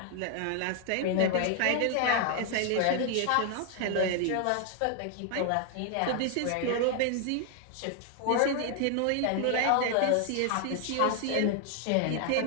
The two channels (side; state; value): both; different; correlation 0.00